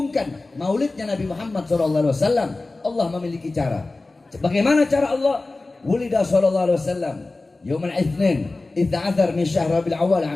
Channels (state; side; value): quieter; right; 3.2 dB